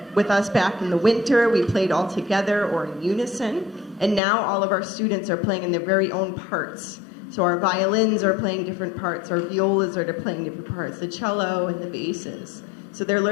with us back in the winter, we played all together or in unison. And now all of our students are playing in their very own parts. So our violins are playing different parts, our violas are playing different parts, the cello and the basses. So they're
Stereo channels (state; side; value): drops out; right; at 4.2 s